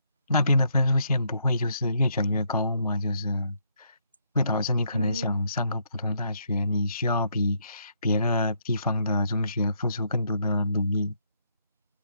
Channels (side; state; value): both; inverted; correlation -0.72